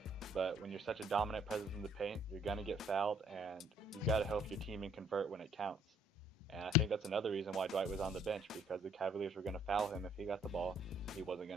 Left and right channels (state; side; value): normal; both; correlation 0.63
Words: But when you're such a dominant presence in the paint, you're going to get fouled, and you've got to help your team and convert when it counts. And I think that's another reason why Dwight was on the bench, because the Cavaliers were going to foul him if he got the ball. He wasn't